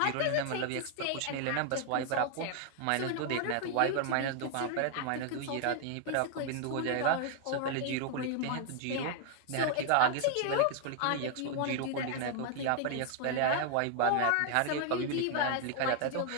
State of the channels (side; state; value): both; different; correlation 0.00